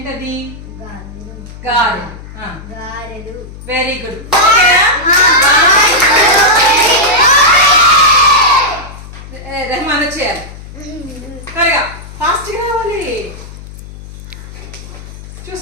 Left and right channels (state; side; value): noise; left; hum, 15 dB below the sound